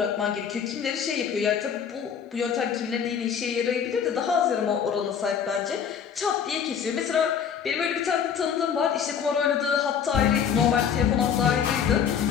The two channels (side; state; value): right; quieter; 7.6 dB